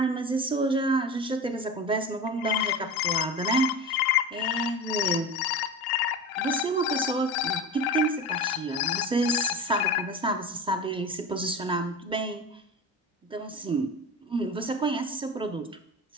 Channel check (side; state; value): both; normal; correlation 0.29